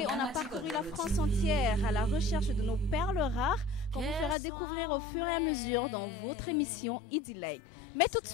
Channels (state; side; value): drops out; right; at 4.4 s